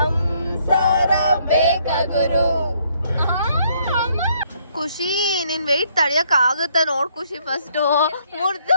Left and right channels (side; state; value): both; inverted; correlation -0.68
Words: ಬೇಕಾಗುರು. ಖುಷಿ ನಿನ್ ವೆಯ್ಟ್ ತಡಿಯಕ್ ಆಗುತ್ತಾ ನೋಡ್ ಖುಷಿ. ಫಸ್ಟ್ ಮುರ್ದು